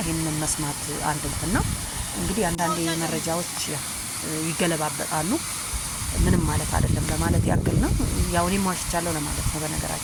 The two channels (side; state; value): both; identical; correlation 1.00